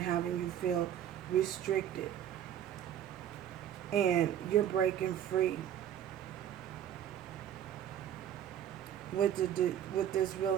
having you feel restricted. And you're breaking free. With this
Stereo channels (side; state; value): left; quieter; 10.3 dB